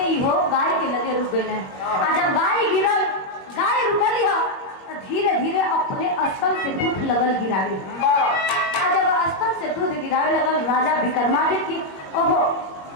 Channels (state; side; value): late; right; 21 ms